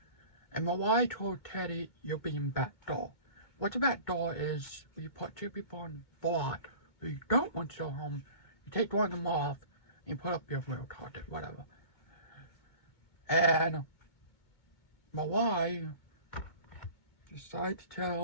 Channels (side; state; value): right; late; 2.2 ms